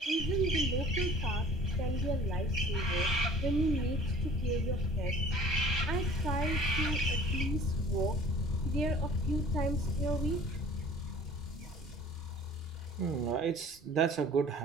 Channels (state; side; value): normal; both; correlation 0.49